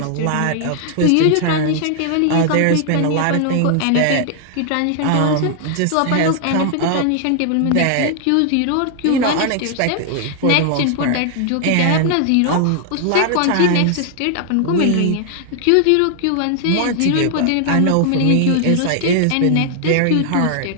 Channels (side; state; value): both; different; correlation 0.00